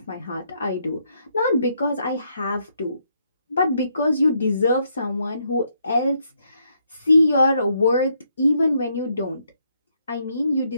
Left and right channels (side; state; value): both; inverted; correlation -0.75